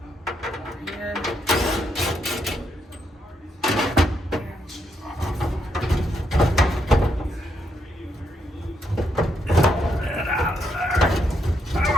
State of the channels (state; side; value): normal; both; correlation 0.78